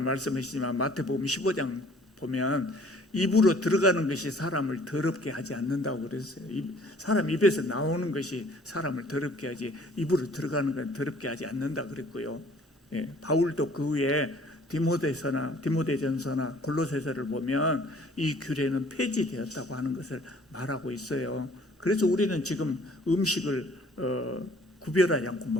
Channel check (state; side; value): normal; both; correlation 0.55